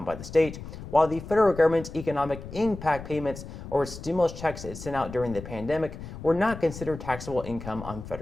by the state, while the federal government's economic impact payments or stimulus checks it sent out during the pandemic were not considered taxable income on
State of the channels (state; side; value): noise; left; rumble, 12 dB below the sound